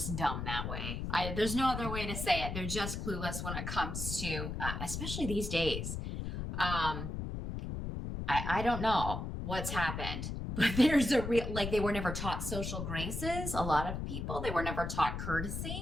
dumb that way. There's no other way to say it. They're just clueless when it comes to, especially these days. I don't know. what's happened. But there's a real, like, they were never taught social graces. A lot of people, they were never taught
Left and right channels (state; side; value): noise; left; rumble, 4 dB below the sound